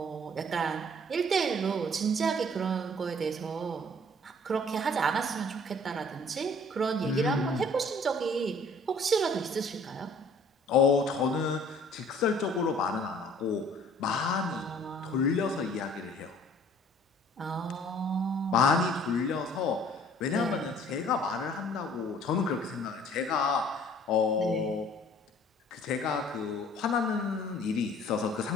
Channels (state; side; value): normal; both; correlation 0.54